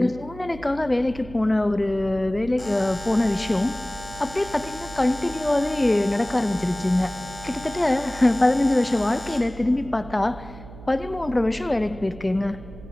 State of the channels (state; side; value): noise; right; hum, 17 dB below the sound